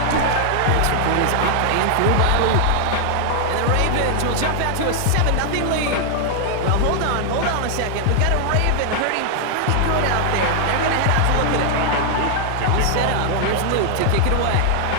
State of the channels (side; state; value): both; different; correlation 0.00